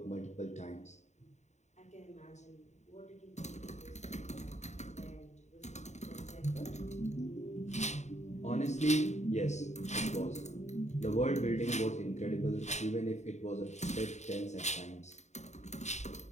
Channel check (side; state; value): right; late; 0.33 ms